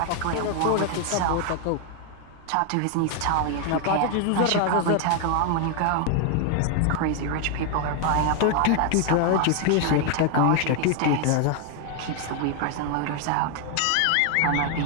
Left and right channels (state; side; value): different; both; correlation 0.00